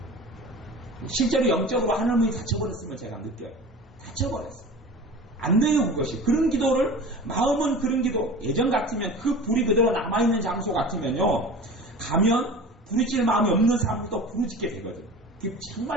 실제로 영적으로 하나님이 닫혀버렸으면 제가 느껴요. 닫혀버렸어요. 안 돼요 그것이. 그런 기도를 마음은 그런 기도 예전 같으면 그 불이 그대로 남아있는 장소 같으면요 가면 부르짖을 마음이 없는 사람도 부르짖게 되거든요.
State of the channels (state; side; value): normal; both; correlation 0.37